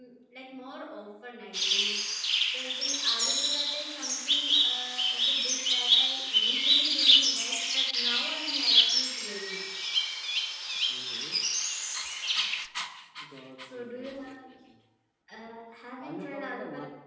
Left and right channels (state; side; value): identical; both; correlation 1.00